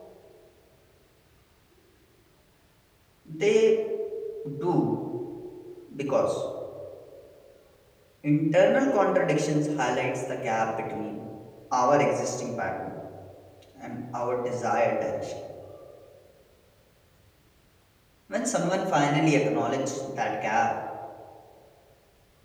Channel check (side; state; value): both; identical; correlation 1.00